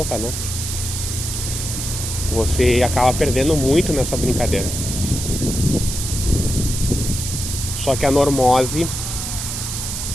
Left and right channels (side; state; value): right; noise; hiss, 5 dB below the sound